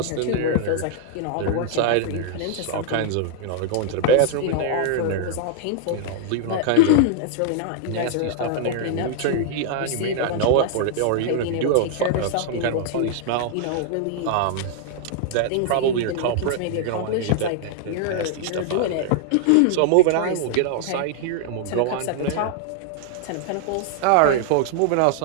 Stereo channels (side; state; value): both; different; correlation 0.00